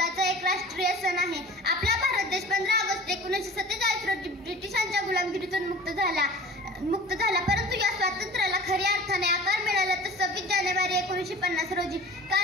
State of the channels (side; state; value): both; normal; correlation 0.41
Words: एक राष्ट्रीय सण आहे. आपला भारत देश 15 ऑगस्ट 1947 रोजी ब्रिटिशांच्या गुलामगिरीतून मुक्त झाला. परंतु या स्वातंत्र्याला खऱ्या अर्थाने आकार मिळाला तर 26 जानेवारी 1950 रोजी,